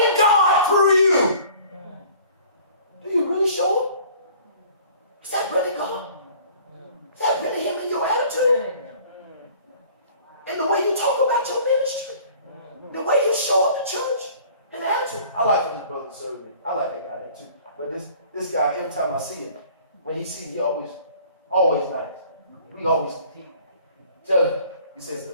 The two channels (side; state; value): both; inverted; correlation -0.50